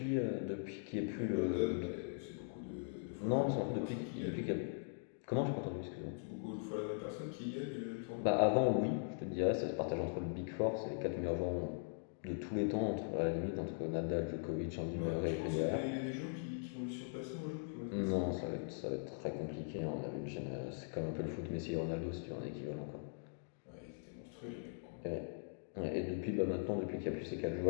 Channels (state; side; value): silent; right; digital silence